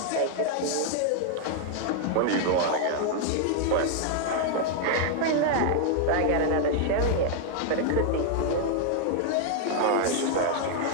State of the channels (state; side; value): different; both; correlation 0.00